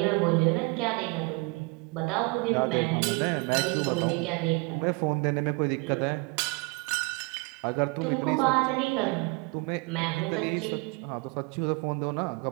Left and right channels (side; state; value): left; quieter; 29.3 dB